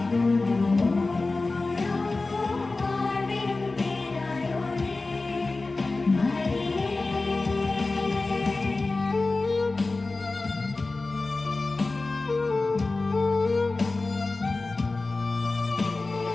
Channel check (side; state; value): right; quieter; 3.4 dB